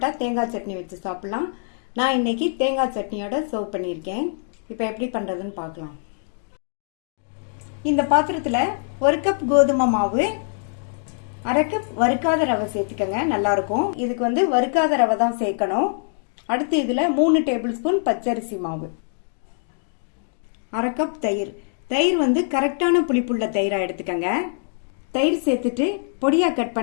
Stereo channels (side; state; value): right; silent; digital silence